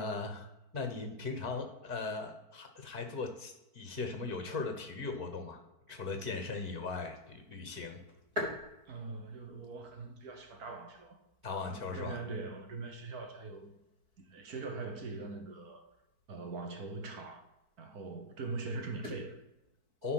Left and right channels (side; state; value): left; late; 4.5 ms